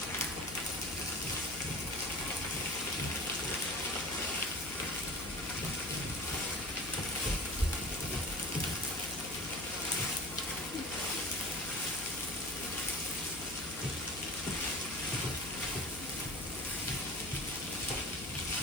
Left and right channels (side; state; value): left; noise; hum, 16 dB below the sound